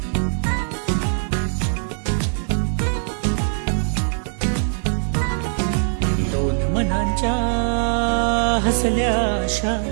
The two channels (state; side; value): silent; left; 65 dB below the other